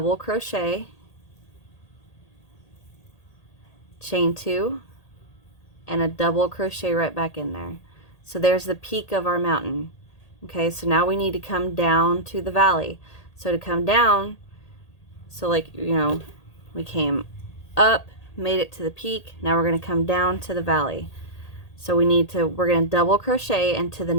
crochet, chain 2, and a double crochet right back in there. So there's the peak of our mountain. Okay, so now we need to come down to the valley. So to come down, so like, you know, we came up, made it to the peak, now we're going to come down to the valley. So we're going to double crochet into the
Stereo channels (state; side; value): late; right; 1.8 ms